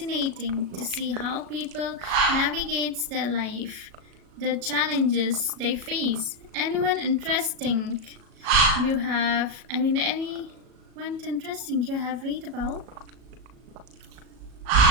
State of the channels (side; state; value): left; late; 37 ms